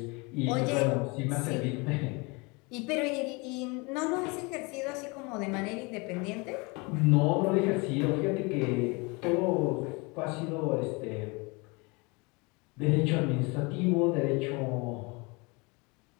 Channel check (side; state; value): right; quieter; 28.0 dB